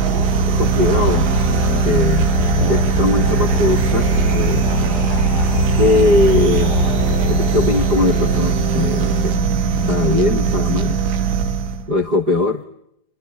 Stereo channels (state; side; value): late; left; 4.9 ms